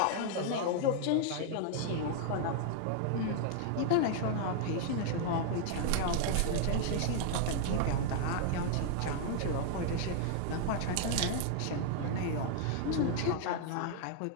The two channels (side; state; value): both; different; correlation 0.00